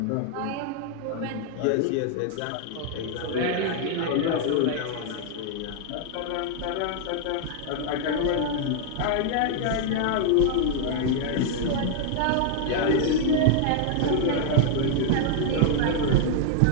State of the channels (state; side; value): different; both; correlation 0.00